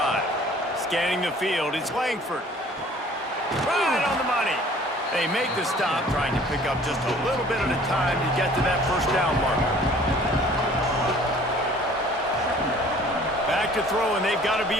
Scanning the field, it's Langford. Right on the money. They make the stop, trying to pick up just a little bit at a time to get to that first down marker. Back to throw, and they've got to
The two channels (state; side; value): normal; both; correlation 0.52